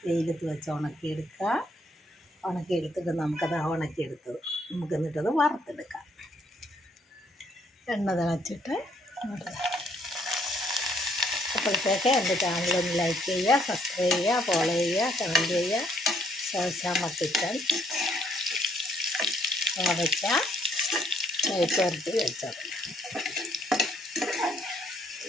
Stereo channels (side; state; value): both; normal; correlation 0.68